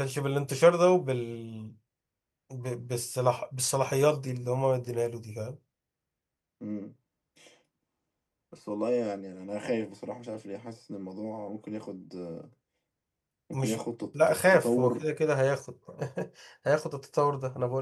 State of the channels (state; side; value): identical; both; correlation 1.00